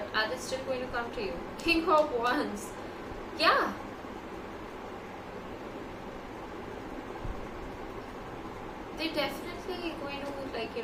are they still going to come to you? King of Wands. Yeah. They're definitely going to, like,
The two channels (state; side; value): identical; both; correlation 1.00